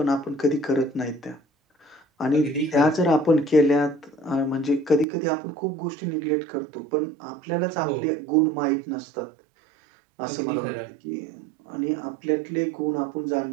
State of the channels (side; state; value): left; drops out; at 5.1 s